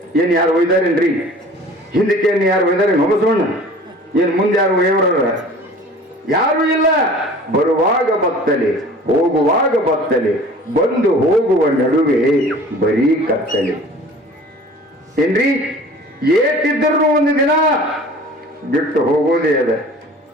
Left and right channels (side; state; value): both; normal; correlation 0.45